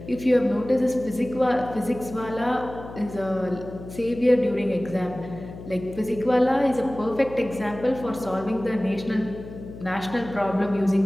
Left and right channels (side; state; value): left; noise; hum, 14 dB below the sound